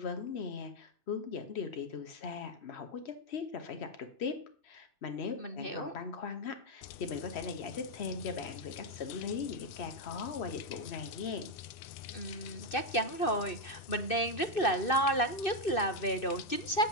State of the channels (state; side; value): late; right; 2.6 ms